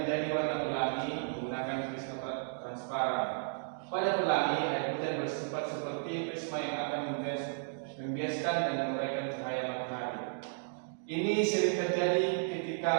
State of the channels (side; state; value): left; silent; digital silence